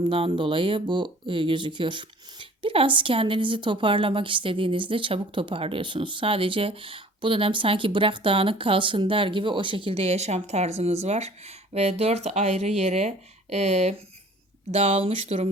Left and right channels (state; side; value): normal; both; correlation 0.50